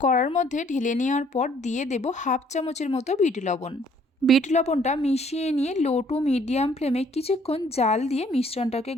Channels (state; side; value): normal; both; correlation 0.61